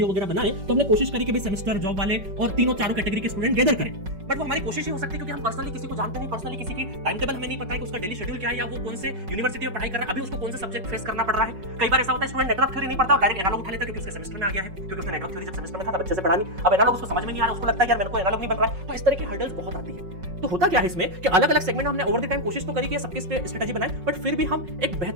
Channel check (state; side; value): late; left; 5.4 ms